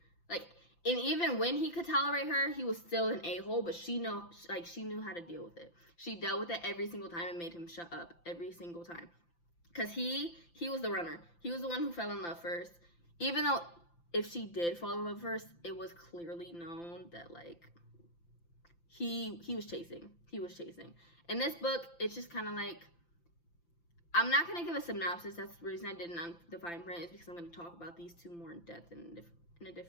Like, and even when he could tolerate her, he was still an a-hole, but she knew how to deal with it. She dealt with it every single time and made him shut up every single time. Because he was the runner. He was the one who fell in love first. Even though if she did fall in love first, it was clearly known that, like, he was chasing. He was chasing. In this book, it's just kind of like, I'm not going to give a synopsis. That's the reason I didn't on the fine print, is because I'm going to talk about these two more in depth in a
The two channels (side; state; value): right; late; 5.9 ms